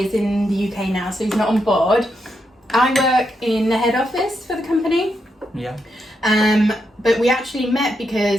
is in the UK now, so he's not on board. I work in the head office for the company. Yeah. But we actually met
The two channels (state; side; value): normal; both; correlation 0.82